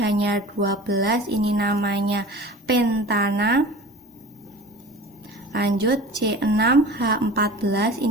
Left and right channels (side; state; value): both; normal; correlation 0.39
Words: 12, ini namanya pentana. Lanjut C6 H14,